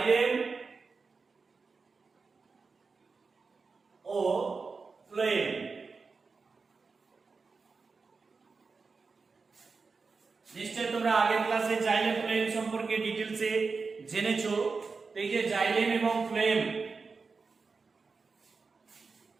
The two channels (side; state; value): left; quieter; 4.6 dB